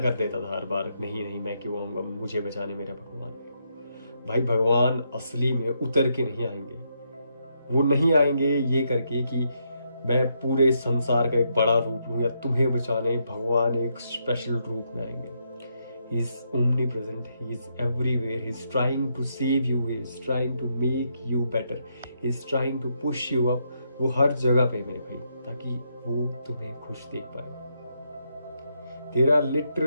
कर देता था हर बार, नहीं नहीं मैं क्यों आऊंगा, मुझे बचाने मेरा भगवान। भाई भगवान असली में उतर के नहीं आएंगे, वो नहीं आएंगे ये करके कि मैं पूरे संसार का एक बड़ा रूप लूं या तुम्हें बचाने। भगवान एक स्पेशल रूप में आएंगे। He is omnipresent, he is everywhere, he is trying to save you, he is trying to make you better, he is trying to push you up. वो हर जगह पे मेरे भाई, ताकि वो तुम्हें खुश देख पाए। There are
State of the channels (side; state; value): both; inverted; correlation -0.78